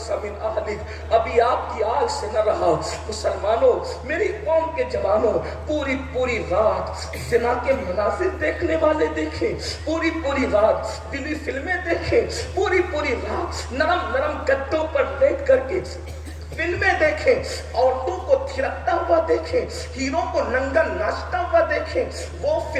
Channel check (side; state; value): both; identical; correlation 1.00